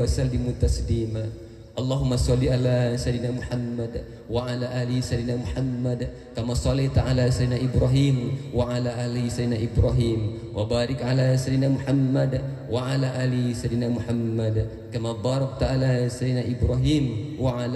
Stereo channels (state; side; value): identical; both; correlation 1.00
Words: sallimu taslima. Allahumma sholli ala sayyidina Muhammad wa ala ali sayyidina Muhammad kama shallaita ala sayyidina Ibrahim wa ala ali sayyidina Ibrahim wa barik ala sayyidina Muhammad wa ala ali sayyidina Muhammad kama barakta ala sayyidina Ibrahim wa